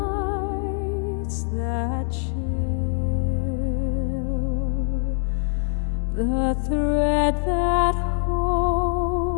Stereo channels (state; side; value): silent; right; 58 dB below the other